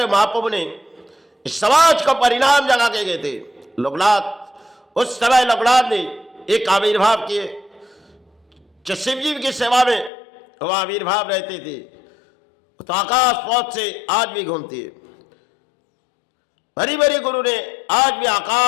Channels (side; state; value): right; drops out; at 10.1 s